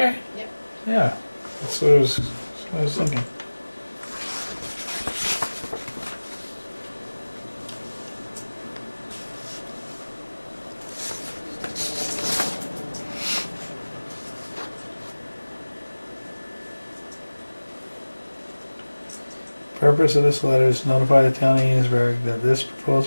Yep. Yeah. That's what that's what I was thinking. Purpose of this letter is to notify the town of Enosburgh that this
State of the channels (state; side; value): inverted; both; correlation -1.00